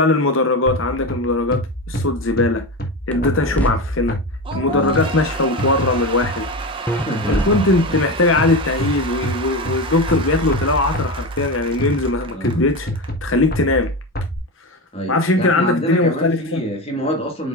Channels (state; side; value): normal; both; correlation 0.21